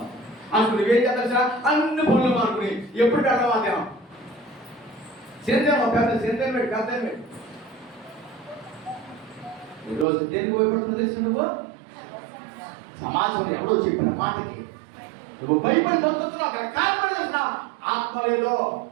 అనుకుని ఏం చేస్తా అన్ని పనులు అనుకుని ఎప్పుడు అడవాదేమో సేంద్రం పెద్ద సేంద్రం పెట్టి పెద్ద పెట్టి ఈరోజు దేనికి భయపడుతుందో తెలుసు? నువ్వు సమాజం ఎవడో చెప్పిన మాటకి నువ్వు భయపడి బతుకుతున్నావు. అక్కడ కారణం తెలుసా? ఆత్మ లేదు.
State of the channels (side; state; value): left; drops out; at 10.1 s